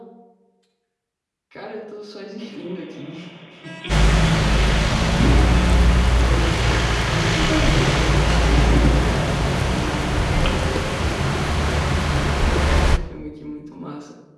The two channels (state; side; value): identical; both; correlation 1.00